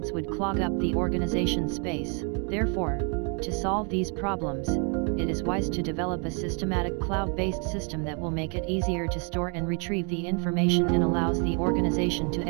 would clog up the organization space. Therefore, to solve these problems, it is wise to develop a systematic cloud-based system that will make it easier to store and retrieve the information and allows the organization to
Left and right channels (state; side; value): quieter; left; 37.2 dB